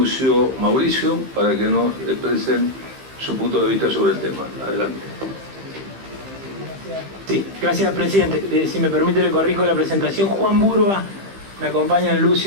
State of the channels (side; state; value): left; late; 15 ms